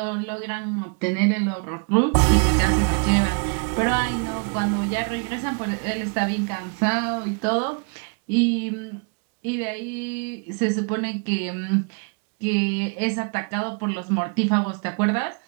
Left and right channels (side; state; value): left; quieter; 37.5 dB